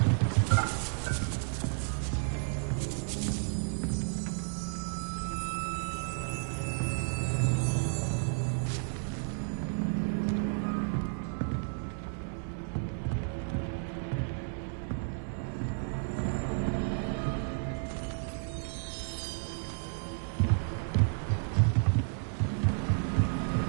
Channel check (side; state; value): left; silent; 56 dB below the other